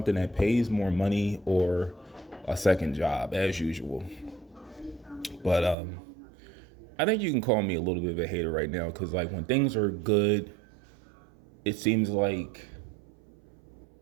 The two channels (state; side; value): drops out; left; at 5.8 s